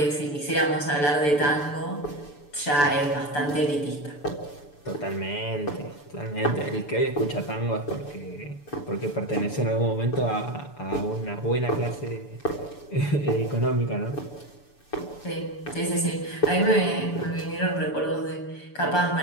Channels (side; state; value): right; late; 6.9 ms